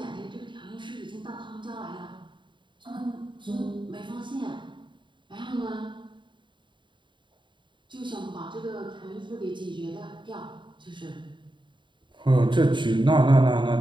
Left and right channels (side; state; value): left; late; 0.23 ms